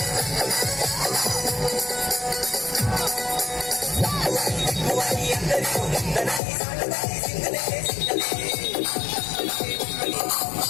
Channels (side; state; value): right; drops out; at 6.4 s